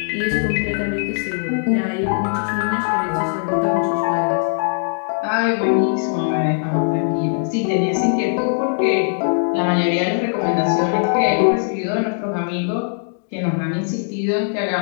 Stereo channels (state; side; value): silent; right; digital silence